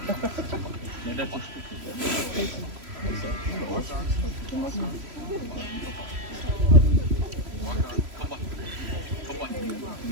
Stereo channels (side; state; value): left; late; 3.1 ms